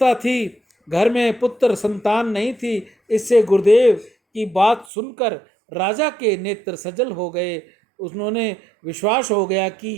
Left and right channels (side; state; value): left; drops out; at 4.9 s